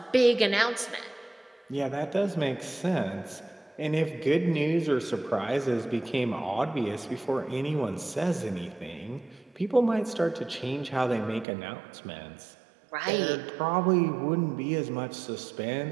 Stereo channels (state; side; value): drops out; left; at 11.5 s